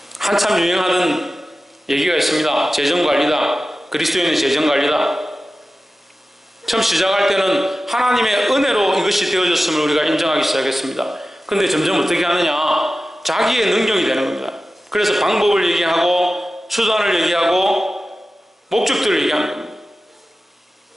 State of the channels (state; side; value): normal; both; correlation 0.94